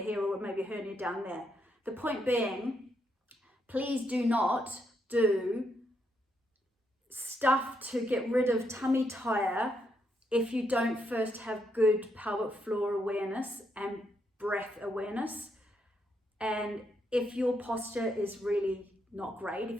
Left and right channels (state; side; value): normal; both; correlation 0.78